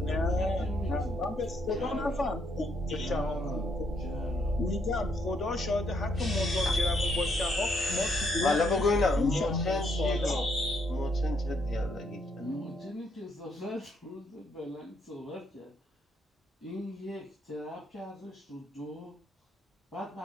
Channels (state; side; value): normal; both; correlation 0.73